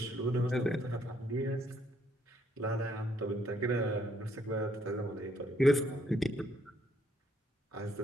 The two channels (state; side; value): normal; both; correlation 0.70